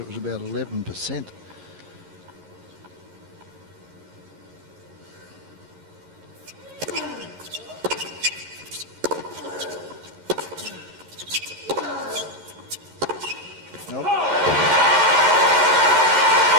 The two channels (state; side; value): late; left; 11 ms